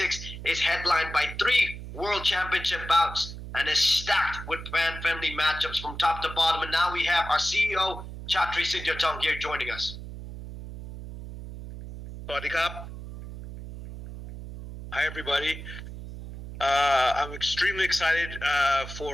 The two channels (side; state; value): right; noise; hum, 11 dB below the sound